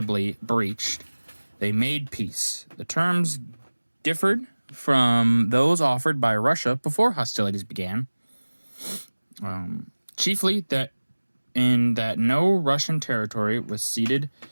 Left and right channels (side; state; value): both; inverted; correlation -1.00